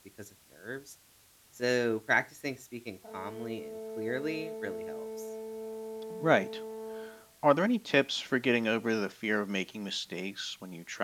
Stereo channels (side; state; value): both; identical; correlation 1.00